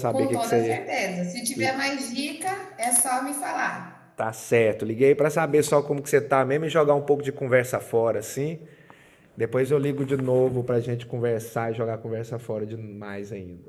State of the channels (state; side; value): identical; both; correlation 1.00